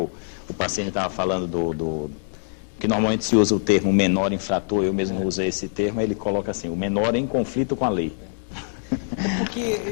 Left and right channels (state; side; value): silent; right; digital silence